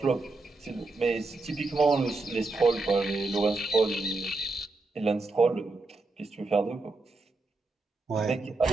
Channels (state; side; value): quieter; left; 3.3 dB